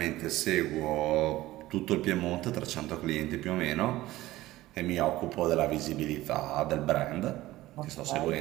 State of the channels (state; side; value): quieter; left; 16.9 dB